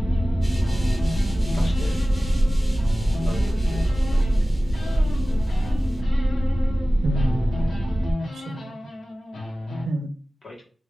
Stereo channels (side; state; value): both; normal; correlation 0.97